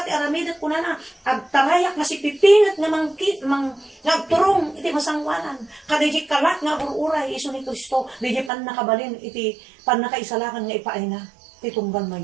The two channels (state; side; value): drops out; left; at 8.5 s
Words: ti aramidat kunana. Agtarayak nga si pipingat nga nagturong iti masangwanan. Kadiji kalat nga ururay iso ni Kristo. Diji pan nakabalin iti pan nakaisalakan nga ipaay na, titunggan mo